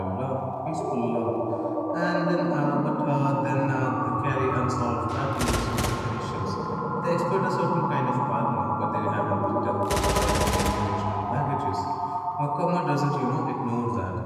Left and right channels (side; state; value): both; identical; correlation 1.00